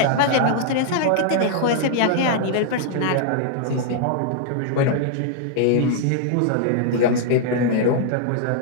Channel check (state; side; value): different; both; correlation -0.01